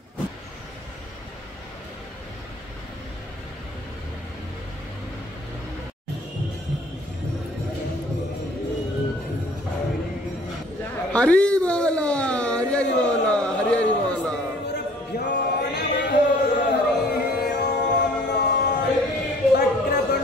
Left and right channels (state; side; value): normal; both; correlation 0.54